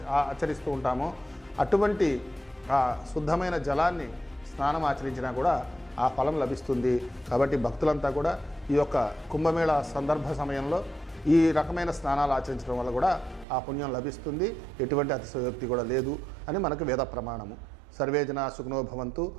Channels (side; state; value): left; drops out; at 13.5 s